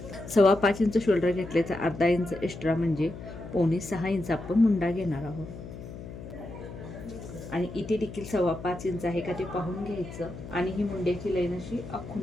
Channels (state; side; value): noise; left; hum, 12 dB below the sound